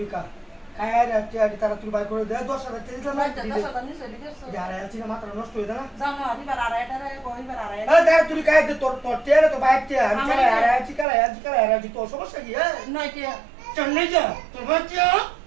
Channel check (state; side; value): drops out; left; at 11.1 s